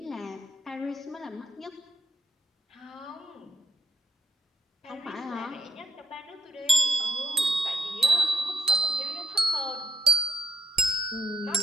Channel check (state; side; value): normal; both; correlation 0.75